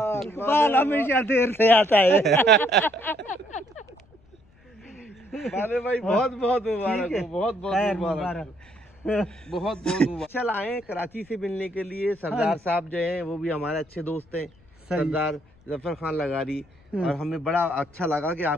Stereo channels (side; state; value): left; noise; rumble, 30 dB below the sound